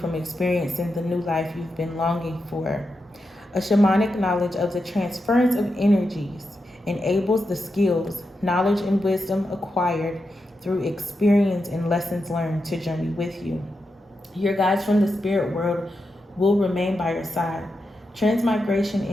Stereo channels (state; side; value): normal; both; correlation 0.87